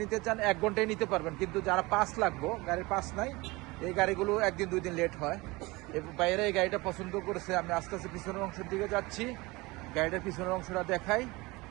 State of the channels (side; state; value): left; quieter; 22.8 dB